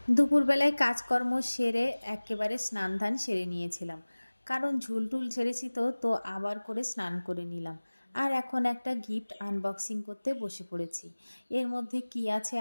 দুপুরবেলায় কাজকর্ম সেরে একেবারে স্নান ধান সেরে নিয়েছিলাম, কারণ ঝুলটুল ঝেড়েছি, তো আবার করে স্নান করে নিলাম। আর এখন একটা গিফট আনবক্সিং করতে বসে পড়েছি। এর মধ্যে কি আছে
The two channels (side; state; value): both; inverted; correlation -1.00